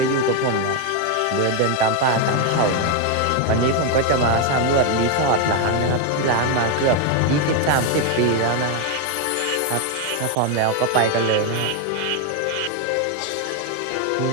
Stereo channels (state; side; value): different; both; correlation 0.01